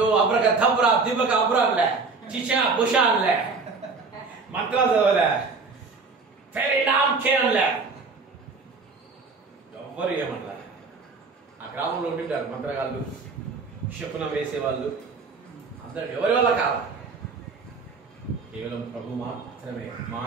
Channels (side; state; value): left; quieter; 4.3 dB